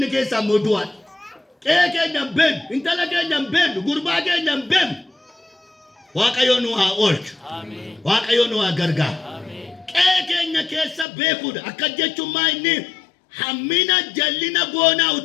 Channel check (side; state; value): right; drops out; at 11.1 s